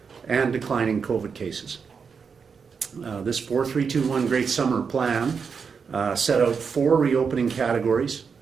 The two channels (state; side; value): quieter; left; 5.9 dB